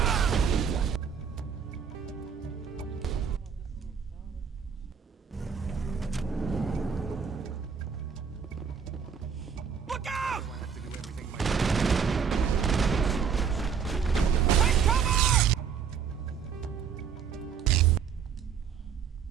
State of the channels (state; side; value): quieter; left; 6.8 dB